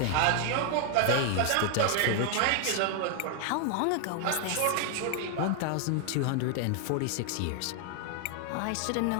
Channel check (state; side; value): different; both; correlation 0.00